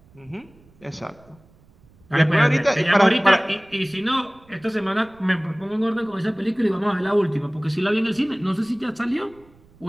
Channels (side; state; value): right; noise; rumble, 29 dB below the sound